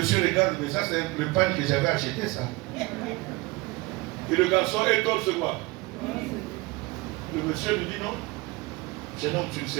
regarde, mais ça c'est le panier que j'avais acheté ça. Et le garçon est torse quoi? Le monsieur lui dit non. Jeune homme, tu ne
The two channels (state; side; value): quieter; left; 23.0 dB